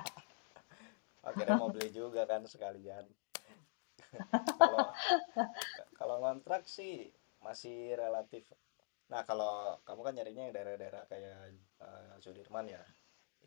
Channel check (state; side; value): silent; right; digital silence